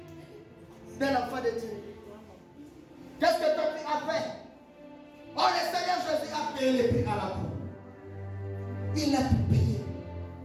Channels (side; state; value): both; identical; correlation 1.00